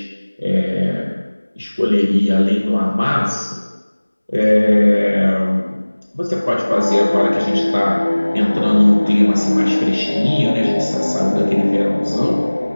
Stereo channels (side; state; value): both; inverted; correlation -1.00